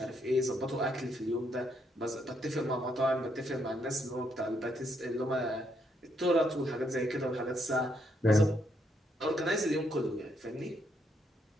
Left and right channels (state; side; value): normal; both; correlation 0.75